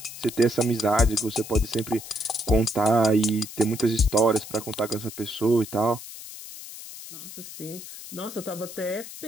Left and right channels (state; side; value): noise; left; hiss, 13 dB below the sound